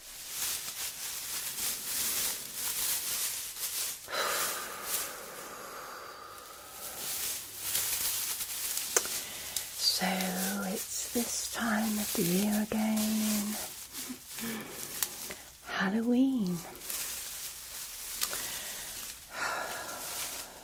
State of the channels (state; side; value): identical; both; correlation 1.00